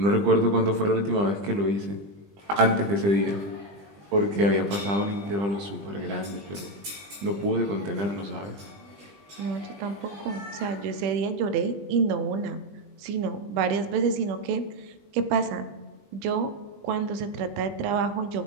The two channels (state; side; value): late; left; 20 ms